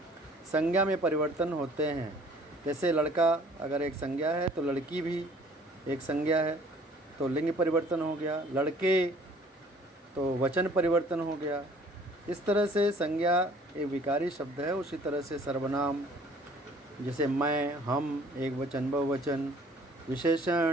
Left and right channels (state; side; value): normal; both; correlation 0.55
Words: संज्ञा में परिवर्तन होते हैं। जैसे लड़का अगर एक संज्ञा है तो लड़की भी एक संज्ञा है, तो लिंग परिवर्तन हो गया। लड़के तो वचन परिवर्तन हो गया। इस तरह से संज्ञा एक विकारी शब्द है। उसी तरह से सर्वनाम जैसे मैं, हम, एक वचन, बहुवचन,